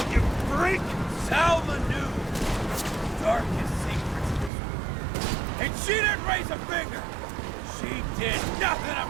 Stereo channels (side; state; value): left; drops out; at 4.5 s